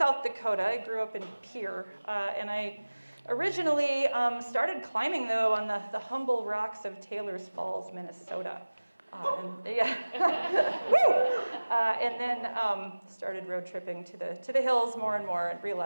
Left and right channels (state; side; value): inverted; both; correlation -1.00